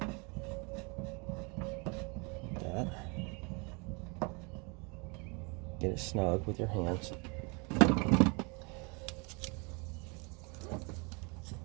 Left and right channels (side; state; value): left; quieter; 31.1 dB